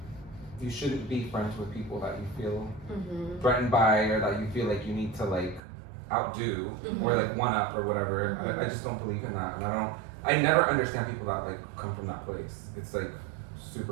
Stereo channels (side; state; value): left; drops out; at 5.6 s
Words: shouldn't be friends with people that you feel Mhm. threatened by or that you feel like you need to like outdo or like one up or whatever. I just don't believe in that, and I never understand people that like come from that place. It's like